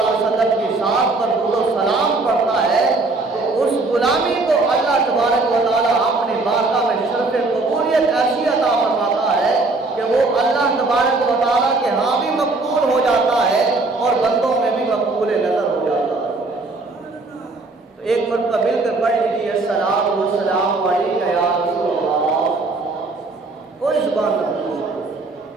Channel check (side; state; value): left; quieter; 3.4 dB